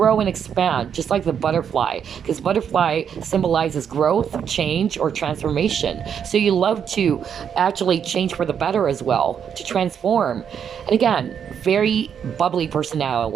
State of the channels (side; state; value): left; quieter; 7.9 dB